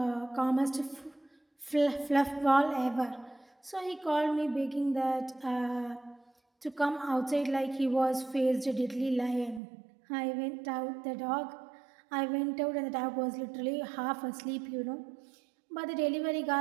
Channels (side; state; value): left; drops out; at 9.6 s